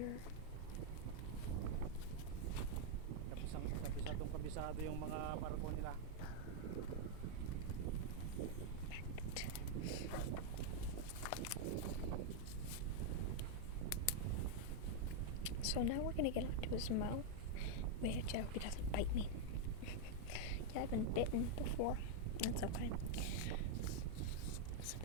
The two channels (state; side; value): different; both; correlation 0.00